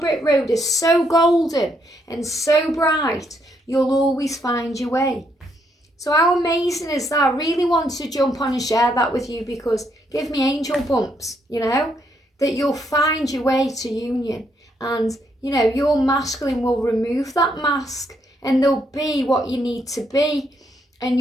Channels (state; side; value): normal; both; correlation 0.75